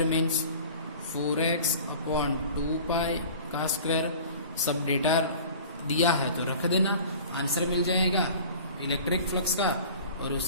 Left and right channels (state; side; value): inverted; both; correlation -0.42